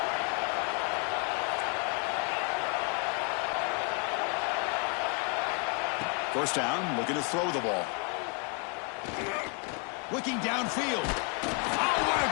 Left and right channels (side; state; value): right; quieter; 35.4 dB